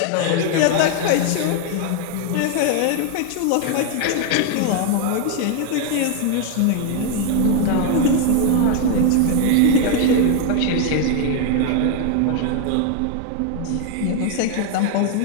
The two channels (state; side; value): different; both; correlation 0.00